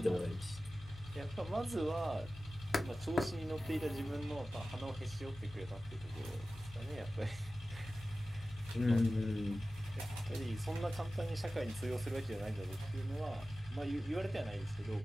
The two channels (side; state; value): both; normal; correlation 0.95